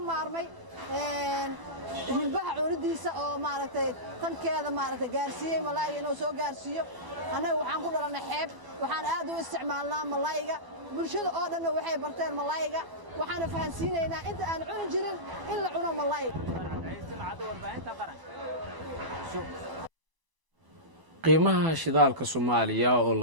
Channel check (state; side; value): late; left; 1.0 ms